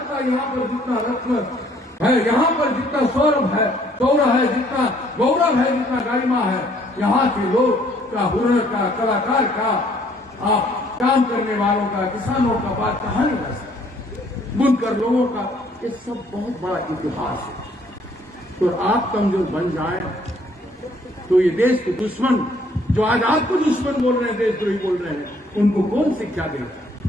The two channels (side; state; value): both; normal; correlation 0.63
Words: यहाँ पर जितना रत्न है, यहाँ पर जितना सौरभ है, गौरव है, जितना गौरव है, जितना गरिमा है, यहाँ के लोग का, हुनर का, कलाकार का, काम करने वालों का, किसानों का बात कहा नहीं जा सकता, बुनकर लोगों का, ये सब बहुत बड़ा इतिहास है। तो आप कमजोर बन जाए तो ये देश के दुश्मन जो आज आपको दुश्मन बोल रहे हैं, देशद्रोही बोल रहे हैं, उनको कौन शिक्षा